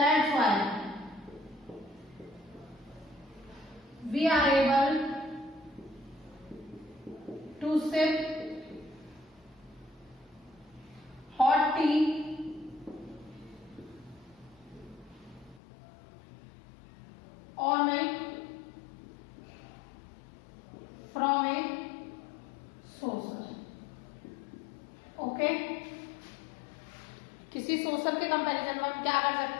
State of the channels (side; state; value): right; drops out; at 15.6 s